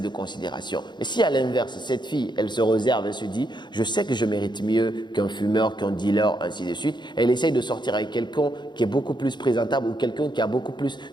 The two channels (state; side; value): late; right; 0.22 ms